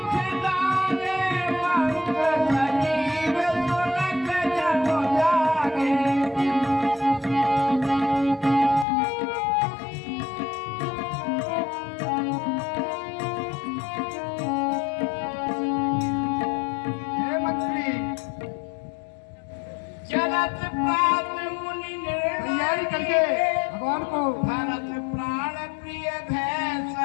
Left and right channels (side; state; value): right; drops out; at 8.8 s